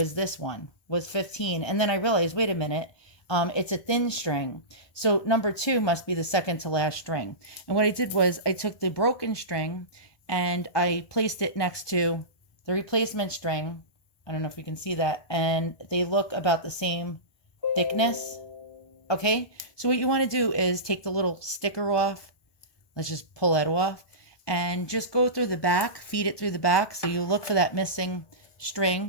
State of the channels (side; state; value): right; late; 1.2 ms